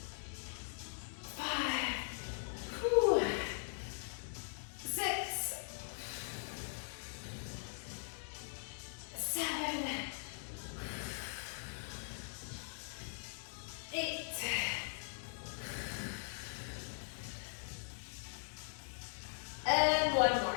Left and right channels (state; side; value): silent; right; digital silence